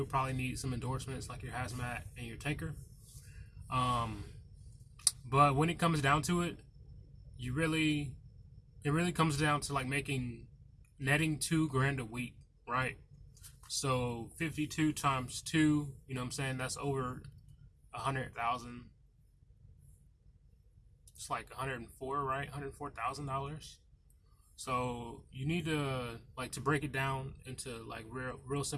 probably need some endorsements like your hazmat and your tanker. But when it comes down to it, it really comes down to like netting $2,000 a week, right? So 52 times 2, you know what I'm saying? That's over 100,000. It's like 104, right? $104,000. So you need to to break it down into like real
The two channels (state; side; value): identical; both; correlation 1.00